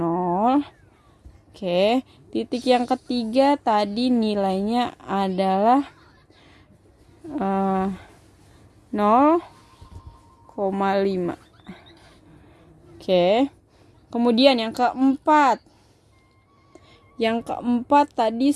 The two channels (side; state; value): both; identical; correlation 1.00